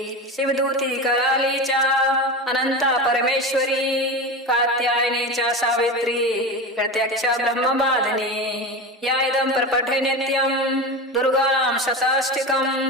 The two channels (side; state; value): both; normal; correlation 0.24